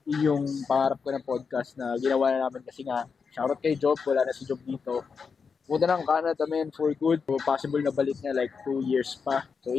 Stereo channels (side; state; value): right; quieter; 5.5 dB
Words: Yung pangarap ko ng podcast na ginawa na namin kasi nga, shoutout kay Job, wala na si Job dito. Punta ng Canada, man, for good. So, possible na balik niya like 2 years pa. So,